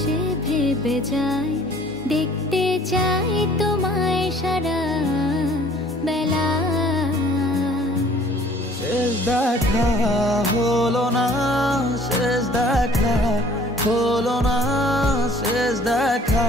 ভেবে যায়, দেখতে চাই তোমায় সারা বেলা। শেষ দেখা হলো না, শেষ দেখা হলো না, শেষ দেখা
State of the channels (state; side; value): normal; both; correlation 0.54